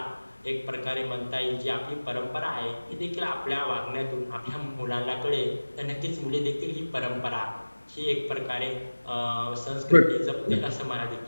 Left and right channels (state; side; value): inverted; both; correlation -1.00